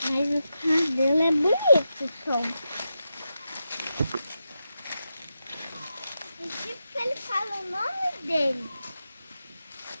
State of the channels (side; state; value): both; inverted; correlation -0.88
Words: Mas o cabelo é bonito, só. E tipo que ele fala o nome dele.